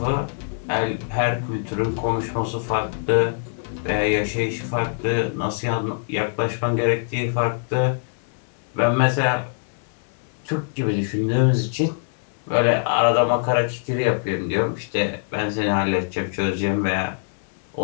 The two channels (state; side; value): silent; right; 63 dB below the other